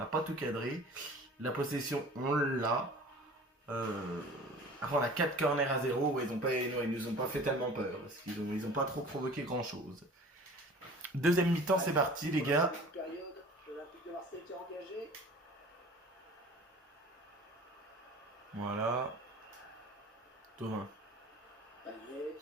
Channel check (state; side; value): normal; both; correlation 0.44